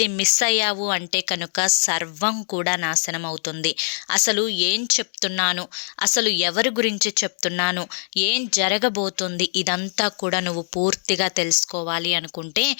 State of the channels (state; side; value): silent; right; digital silence